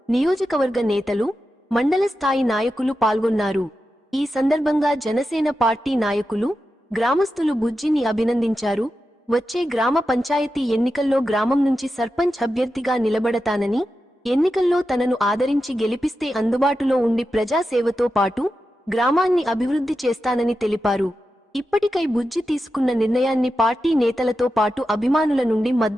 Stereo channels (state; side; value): normal; both; correlation 0.90